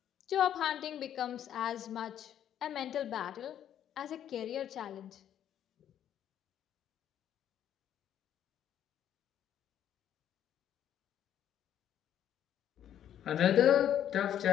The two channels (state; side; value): quieter; right; 10.3 dB